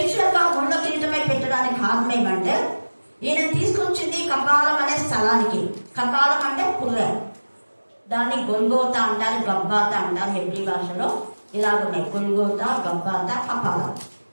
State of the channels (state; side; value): inverted; both; correlation -1.00